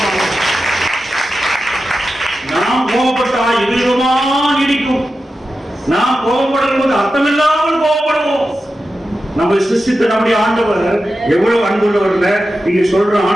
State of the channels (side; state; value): both; normal; correlation 0.91